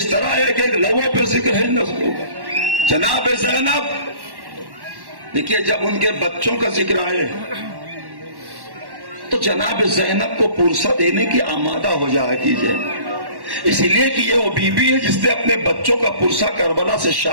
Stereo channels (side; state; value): left; late; 1.1 ms